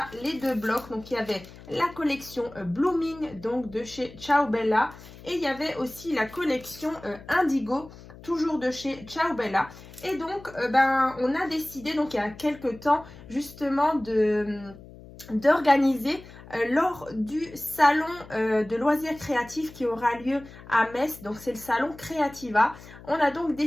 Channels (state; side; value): noise; left; hum, 18 dB below the sound